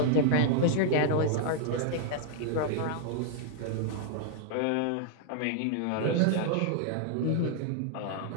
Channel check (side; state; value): both; different; correlation -0.01